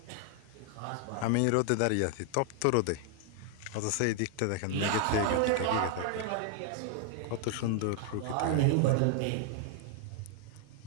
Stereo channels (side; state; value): both; different; correlation 0.00